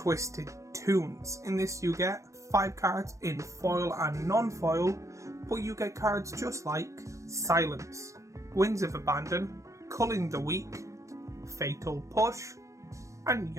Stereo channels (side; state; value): left; late; 0.15 ms